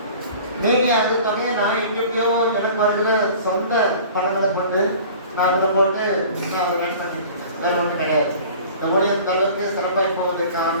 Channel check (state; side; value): inverted; both; correlation -0.44